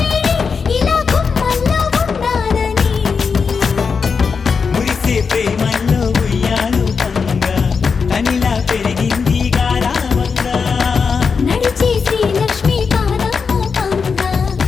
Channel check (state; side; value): quieter; right; 5.5 dB